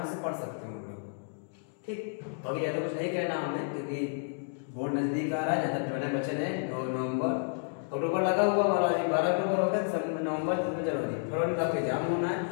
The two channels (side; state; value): right; silent; digital silence